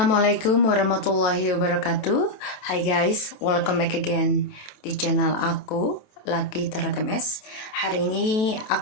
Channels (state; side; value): late; right; 28 ms